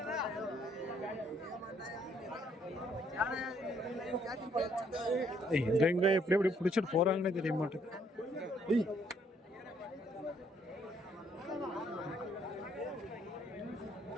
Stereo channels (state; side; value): normal; both; correlation 0.68